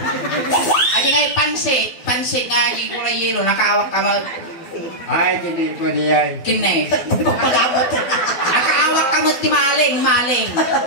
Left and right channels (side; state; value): right; late; 12 ms